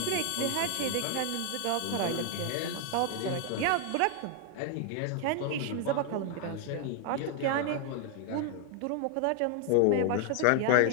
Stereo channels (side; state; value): both; different; correlation 0.00